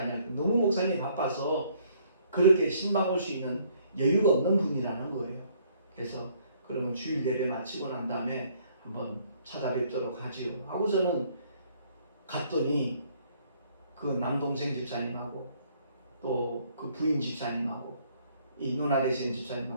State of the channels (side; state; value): both; inverted; correlation -0.64